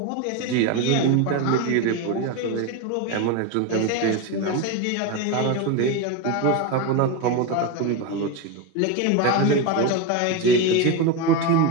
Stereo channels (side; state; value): both; different; correlation 0.04